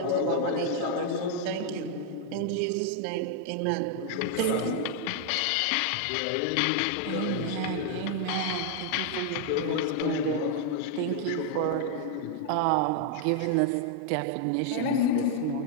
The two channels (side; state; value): both; different; correlation 0.00